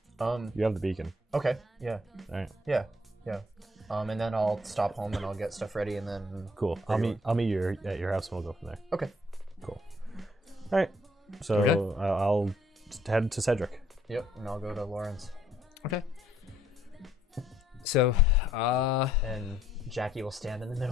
You have the beacon. Okay. Yeah. All right. Yeah. And then I'll stop home and I'll get stuff ready and then. Cool. I'll meet you at your house and we'll go from there. Okay. Cool. All right. So Okay. I'll head to Cedric. Yep. And I'll go to Lauren's. Okay. So, And Jackie will stand in the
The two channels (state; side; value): normal; both; correlation 0.67